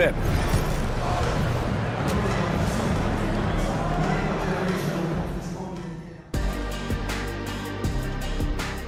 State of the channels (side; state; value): both; identical; correlation 1.00